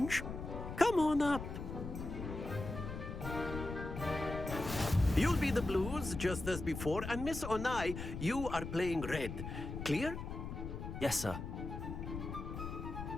Come on up. You'll be the blues, just as before, and Miss Onai, you are playing red. Clear? Yes, sir.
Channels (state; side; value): noise; left; rumble, 7 dB below the sound